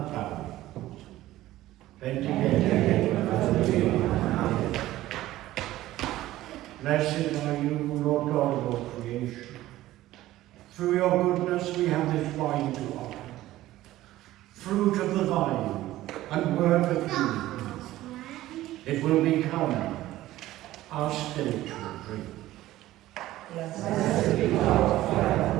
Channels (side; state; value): left; quieter; 15.5 dB